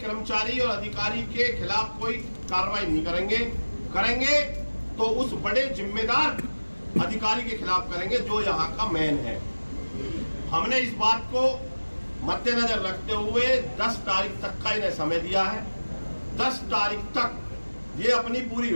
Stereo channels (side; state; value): both; inverted; correlation -1.00